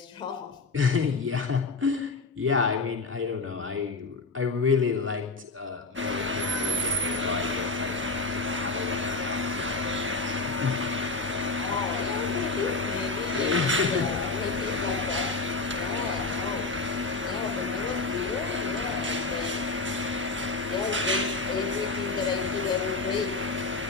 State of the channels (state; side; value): quieter; right; 3.7 dB